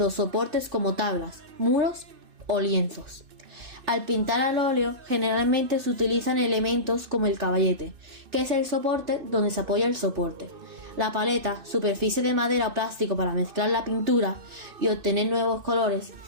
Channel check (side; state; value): left; late; 2.6 ms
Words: soportes como tablas, muros o lienzos. Al pintar al óleo, generalmente se utilizan elementos como el caballete, que es el soporte donde se apoya el soporte. La paleta, superficie de madera o plástico para mezclar la pintura y obtener nuevos colores.